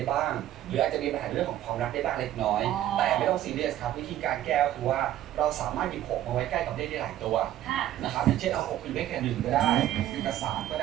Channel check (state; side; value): quieter; left; 12.8 dB